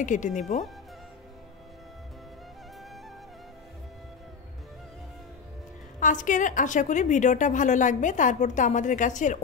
কেটে নিব। আজকের আশা করি ভিডিওটা ভালো লাগবে। তারপর তো আমাদের গাছের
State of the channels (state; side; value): quieter; right; 5.9 dB